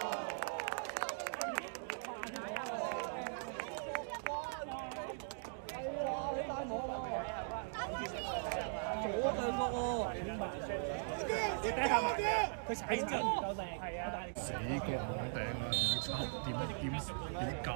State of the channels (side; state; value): left; silent; digital silence